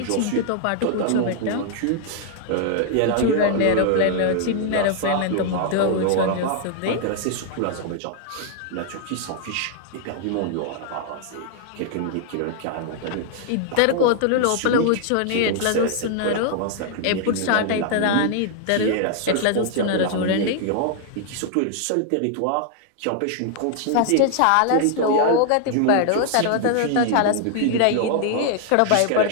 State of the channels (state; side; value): different; both; correlation 0.00